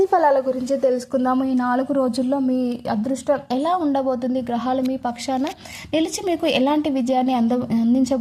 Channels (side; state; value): both; identical; correlation 1.00